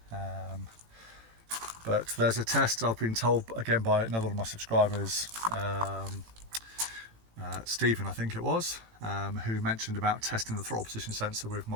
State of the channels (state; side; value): late; left; 18 ms